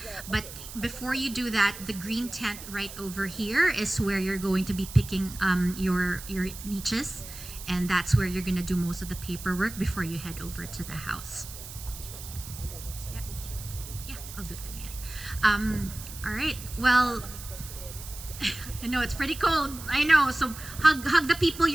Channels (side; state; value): right; noise; hiss, 13 dB below the sound